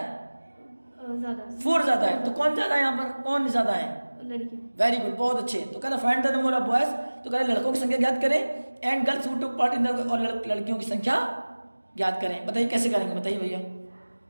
ज्यादा 4 ज्यादा है। तो कौन ज्यादा है यहाँ पर, कौन ज्यादा है? लड़कियां। वेरी गुड, बहुत अच्छे। तो कह रहा find the number of boys, तो कह रहा लड़कों की संख्या ज्ञात करें and girls who took part in the, और लड़कियों की संख्या ज्ञात करें। बताइए कैसे करेंगे, बताइए भैया।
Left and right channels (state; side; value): inverted; both; correlation -1.00